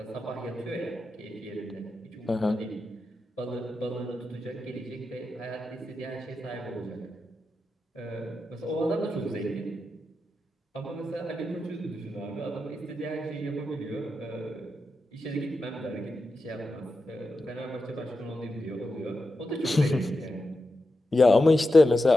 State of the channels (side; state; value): both; normal; correlation 0.89